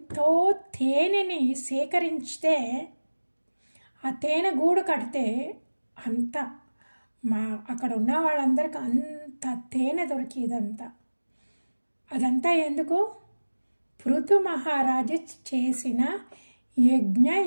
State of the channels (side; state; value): both; inverted; correlation -1.00